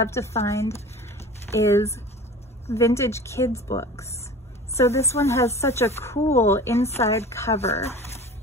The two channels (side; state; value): both; normal; correlation 0.39